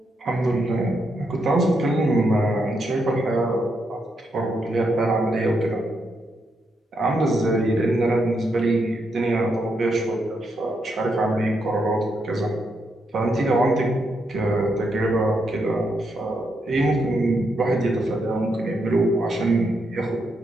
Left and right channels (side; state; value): both; normal; correlation 0.80